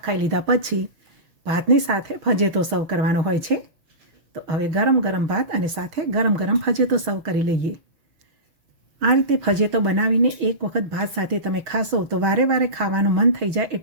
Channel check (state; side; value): late; left; 6.4 ms